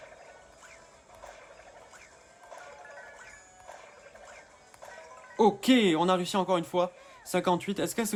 Ok, on a réussi encore une fois. 58, est-ce qu'elle se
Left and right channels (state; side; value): identical; both; correlation 1.00